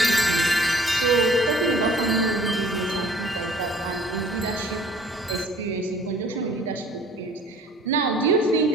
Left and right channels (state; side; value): normal; both; correlation 0.54